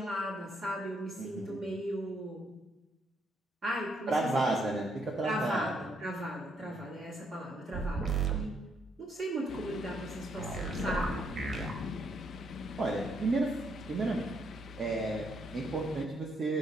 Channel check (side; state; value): both; normal; correlation 0.73